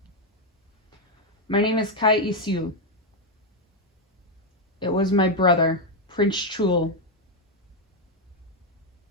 "My name is Kai Isu. It was my brother, Prince Chul,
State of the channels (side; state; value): both; normal; correlation 0.03